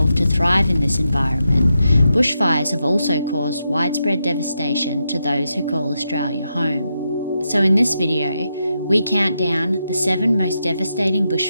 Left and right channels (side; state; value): both; inverted; correlation -0.85